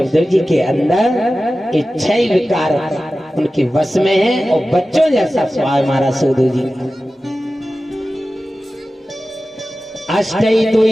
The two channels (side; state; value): both; normal; correlation 0.95